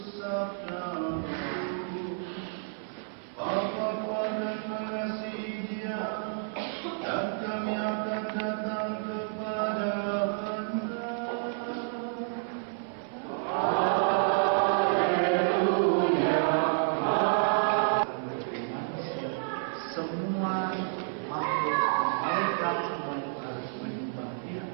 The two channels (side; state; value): left; silent; 58 dB below the other